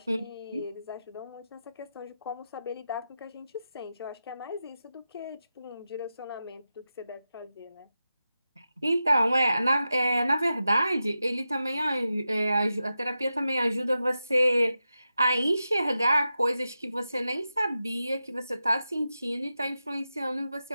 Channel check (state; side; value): inverted; both; correlation -0.91